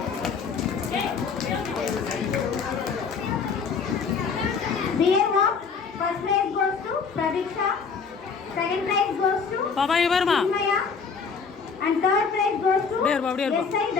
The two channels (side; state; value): right; quieter; 5.6 dB